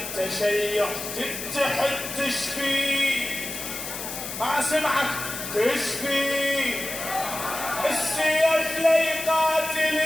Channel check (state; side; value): noise; left; hiss, 7 dB below the sound